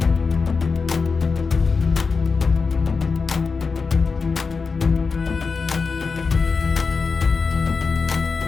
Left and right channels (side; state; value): right; quieter; 4.8 dB